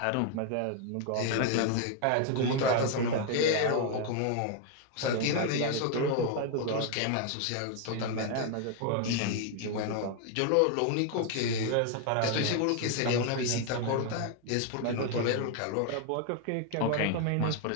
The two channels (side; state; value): both; different; correlation 0.00